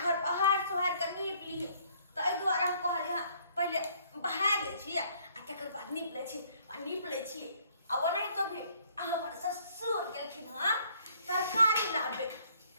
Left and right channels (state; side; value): inverted; both; correlation -0.63